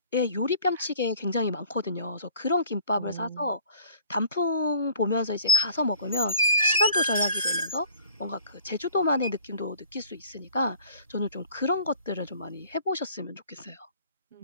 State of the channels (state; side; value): inverted; both; correlation -0.52